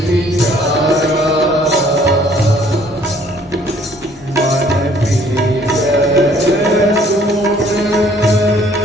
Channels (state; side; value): normal; both; correlation 0.60